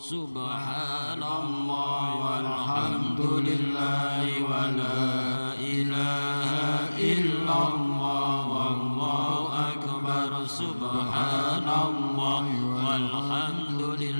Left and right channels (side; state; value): both; inverted; correlation -1.00